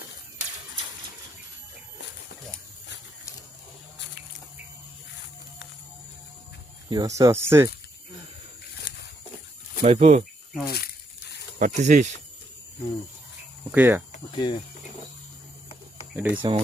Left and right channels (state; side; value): normal; both; correlation 0.76